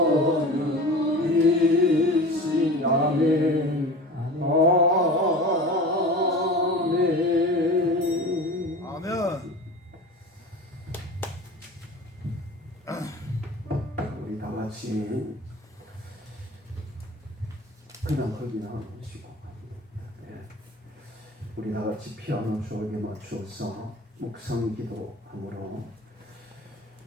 아멘. 아멘. 아멘. 우리 다 같이 그냥 흙이나 하시고, 우리 다 같이 피아노 주옥에 맞추어서 묵상 기도함으로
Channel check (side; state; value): both; normal; correlation 0.36